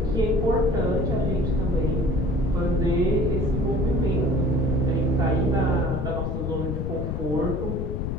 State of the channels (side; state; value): left; noise; rumble, 2 dB below the sound